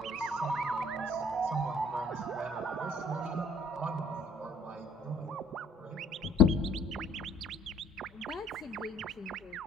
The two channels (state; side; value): normal; both; correlation 0.56